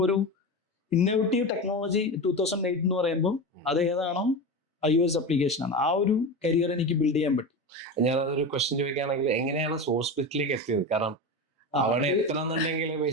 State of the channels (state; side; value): normal; both; correlation 0.23